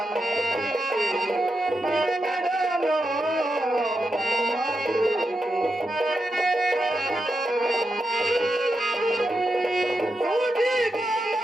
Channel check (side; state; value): both; normal; correlation 0.86